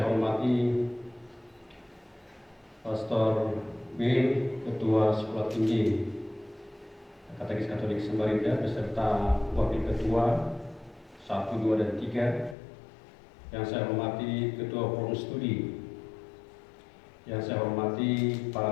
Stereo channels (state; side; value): drops out; right; at 12.6 s